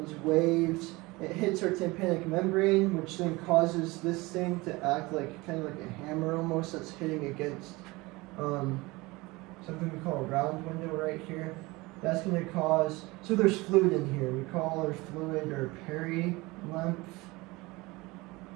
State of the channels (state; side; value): quieter; left; 22.6 dB